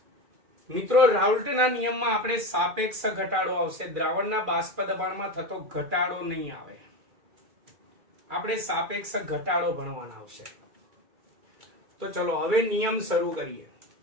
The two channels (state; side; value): late; left; 2.4 ms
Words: મિત્રો, રાઉલ્ટના નિયમમાં આપણે સાપેક્ષ ઘટાડો આવશે, દ્રાવણના બાષ્પ દબાણમાં થતો ઘટાડો નહીં આવે। આપણે સાપેક્ષ ઘટાડો ભણવાના આવશે। તો ચલો હવે નિયમ શરૂ કરીએ।